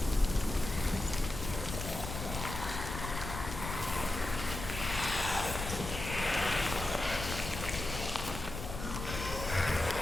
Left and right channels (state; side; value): noise; left; rumble, 7 dB below the sound